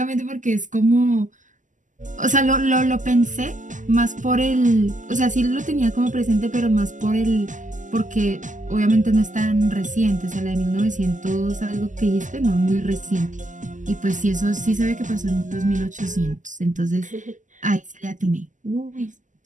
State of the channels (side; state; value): left; late; 0.37 ms